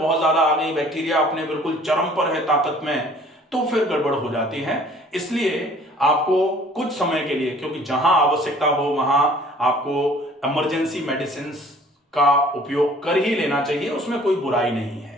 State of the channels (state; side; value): normal; both; correlation 0.53